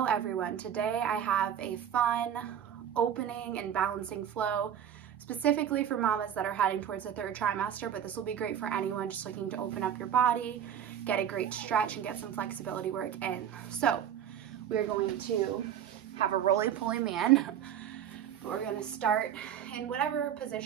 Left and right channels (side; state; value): left; quieter; 9.5 dB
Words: everyone. Today I have a fun opening and balancing flow specifically for mamas that are heading towards the third trimester, but this will be great for anyone just looking to open up your body, get a great stretch, and get some flexibility work in. So we're going to have a roly-poly man. We're going to start in whatever